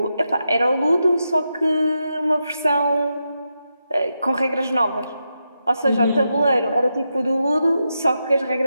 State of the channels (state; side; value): inverted; both; correlation -0.86